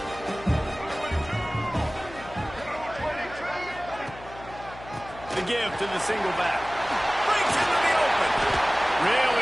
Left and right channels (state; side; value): noise; left; hum, 17 dB below the sound